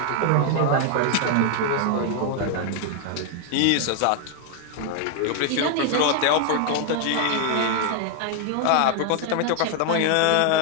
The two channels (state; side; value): different; both; correlation 0.00